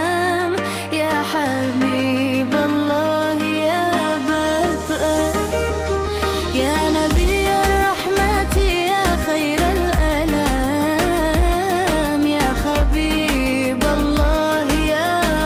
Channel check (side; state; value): both; identical; correlation 1.00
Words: يا حبيب الله يا بدء. يا نبي الرحمة يا خير الأنام، يا حبيب الله